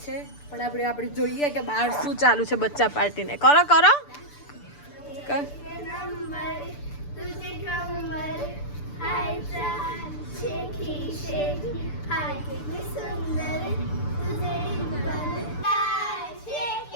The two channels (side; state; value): right; late; 6.8 ms